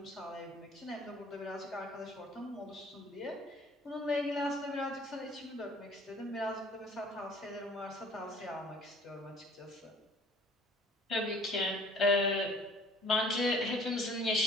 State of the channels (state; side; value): normal; both; correlation 0.53